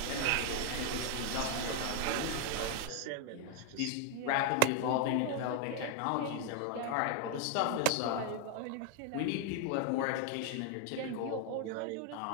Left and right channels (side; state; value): both; different; correlation 0.00